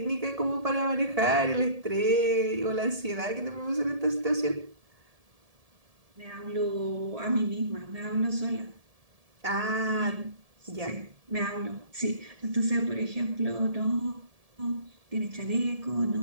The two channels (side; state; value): left; late; 1.7 ms